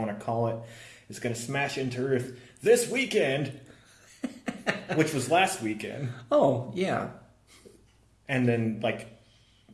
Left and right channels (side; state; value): both; identical; correlation 1.00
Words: to call it is going to smash into Earth this weekend, which was last weekend. Oh, yeah. And then,